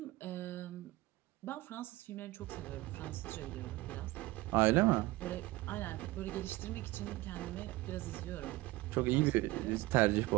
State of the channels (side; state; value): left; quieter; 19.4 dB